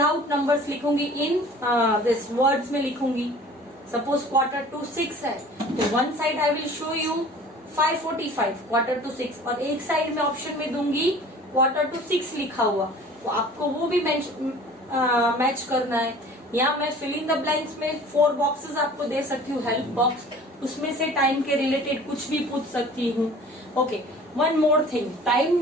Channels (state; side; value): normal; both; correlation 0.46